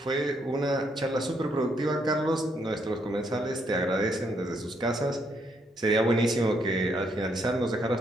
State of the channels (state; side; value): normal; both; correlation 0.74